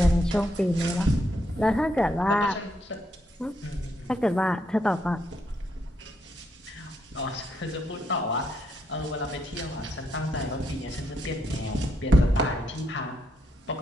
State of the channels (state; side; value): normal; both; correlation 0.78